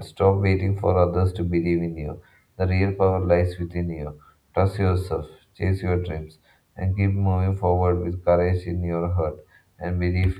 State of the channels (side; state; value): both; identical; correlation 1.00